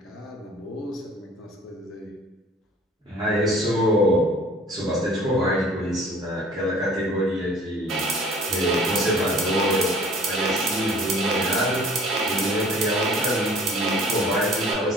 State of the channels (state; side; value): normal; both; correlation 0.50